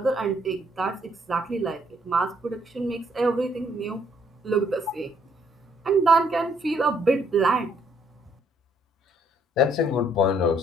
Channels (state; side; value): normal; both; correlation 0.67